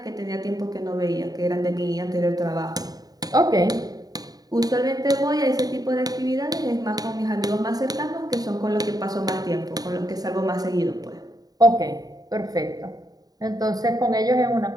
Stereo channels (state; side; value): late; left; 0.18 ms